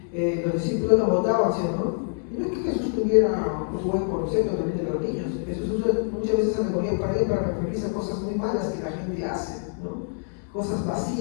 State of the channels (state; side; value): silent; right; digital silence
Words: Los discípulos lo botaban, ¿sí, no? Y no es que Jesús tuviera un buen concepto también de los niños. Jesús usa muchas veces alegoría para él para referirse a cosas muy malas que la gente hace, ¿no? Cosas